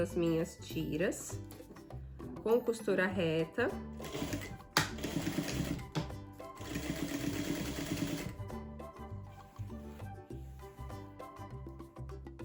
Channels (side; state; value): both; identical; correlation 1.00